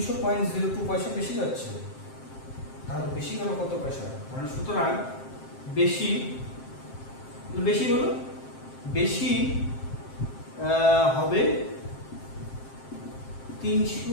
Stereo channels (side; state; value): right; late; 7.6 ms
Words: পয়সা বেশি যাচ্ছে। তাহলে বেশি গেল কত পয়সা, মানে সুতরাং বেশি বেশি হলো বেশি হবে